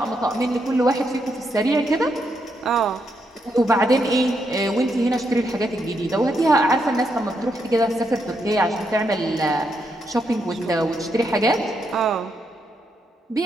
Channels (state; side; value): normal; both; correlation 0.80